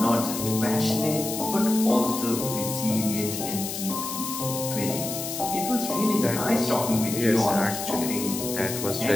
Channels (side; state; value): left; noise; hiss, 6 dB below the sound